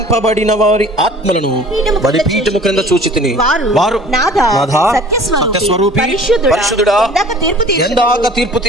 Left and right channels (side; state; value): both; normal; correlation 0.47